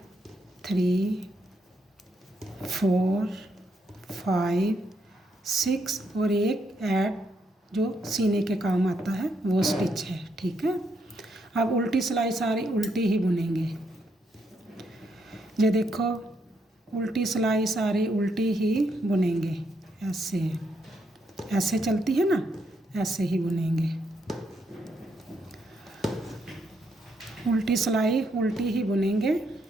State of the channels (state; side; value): normal; both; correlation 0.77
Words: 3 4 5 6 और एक ऐड जो सीने के काम आता है वो स्टिच है, ठीक है। अब उल्टी सिलाई सारी उल्टी ही बुनेंगे। ये देखो, उल्टी सिलाई सारी उल्टी ही बुनेंगे। ऐसे चलती है ना, ऐसे ही बुनेंगे। उल्टी सिलाई उल्टी ही बुनेंगे।